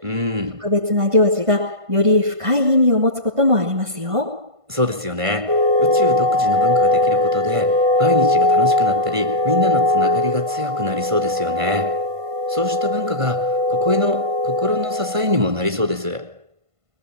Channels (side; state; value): left; late; 1.5 ms